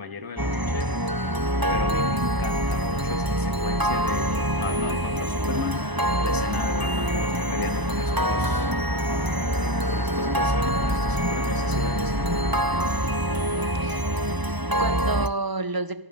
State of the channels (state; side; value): late; left; 1.0 ms